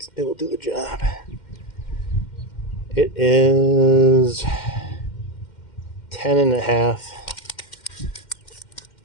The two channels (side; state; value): right; late; 2.1 ms